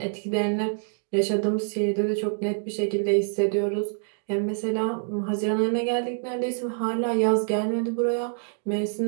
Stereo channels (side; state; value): left; silent; digital silence